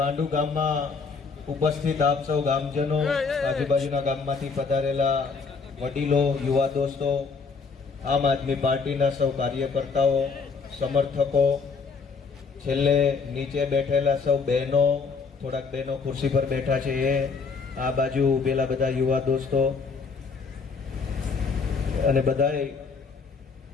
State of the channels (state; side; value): quieter; right; 4.9 dB